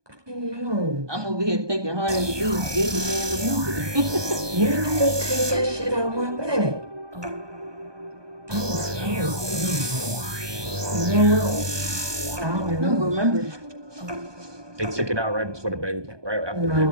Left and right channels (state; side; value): late; left; 1.2 ms